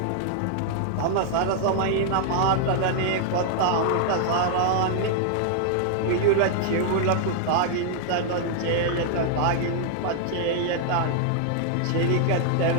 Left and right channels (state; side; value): different; both; correlation -0.01